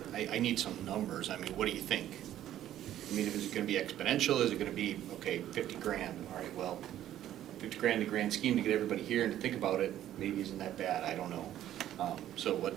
I need some numbers, I mean, what do you think? I mean, is it gonna be exponential, is it gonna be, okay, 50 grand, all right, well, 50 grand in the grand scheme to get everybody here and to think about it, maybe isn't that bad, I don't know. So what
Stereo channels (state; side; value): quieter; left; 12.2 dB